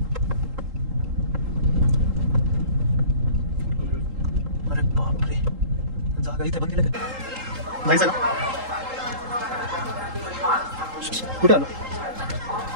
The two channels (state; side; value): late; left; 3.8 ms